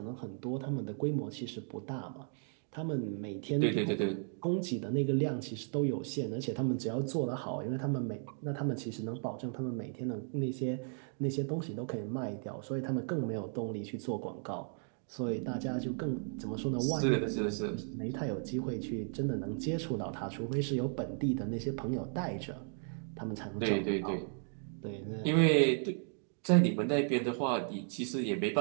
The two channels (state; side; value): silent; left; 54 dB below the other